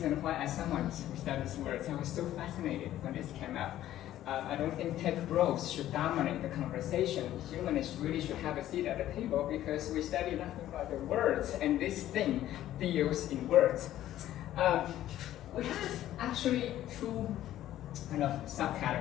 why, as someone who studies words, I was so fascinated when this came out. I don't think tech bros should dominate the conversation. Humanists really should have a seat at the table because we study nothing but the words, and this thing deals in words. We have actually two kind of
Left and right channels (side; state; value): right; quieter; 13.1 dB